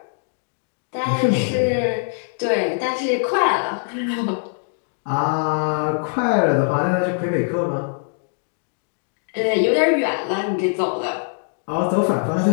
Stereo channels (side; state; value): right; silent; digital silence